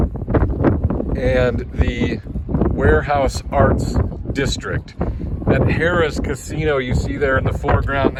and the Warehouse Arts District. That Harrah's Casino you see there in the foreground,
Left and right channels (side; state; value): both; identical; correlation 1.00